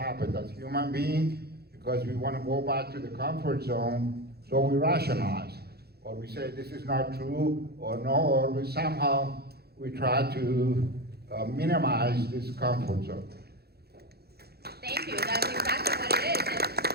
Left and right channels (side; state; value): left; late; 0.46 ms